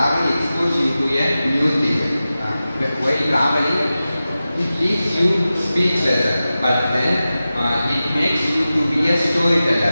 exposes you to a new thing. While traveling, it leaves you speechless, but then it makes you to be a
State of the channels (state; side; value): inverted; both; correlation -0.94